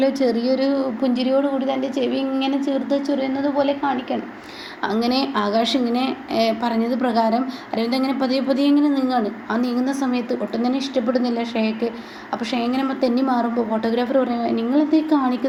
ചെറിയൊരു പുഞ്ചിരിയോടുകൂടി തൻ്റെ ചെവി ഇങ്ങനെ ചേർത്ത് ചൊറിയുന്നത് പോലെ കാണിക്കണം. അങ്ങനെ ആകാശ് ഇങ്ങനെ പറഞ്ഞത് പ്രകാരം അരവിന്ദ് അങ്ങനെ പതിയെ ഇങ്ങനെ നീങ്ങാണ്. ആ നീങ്ങുന്ന സമയത്ത് ഒട്ടും തന്നെ ഇഷ്ടപ്പെടുന്നില്ല ഷേക്ക്. അപ്പോൾ ഷേ ഇങ്ങനെ തെന്നി മാറുമ്പോൾ ഫോട്ടോഗ്രാഫർ പറയുക, നിങ്ങളെന്തേ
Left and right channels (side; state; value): both; identical; correlation 1.00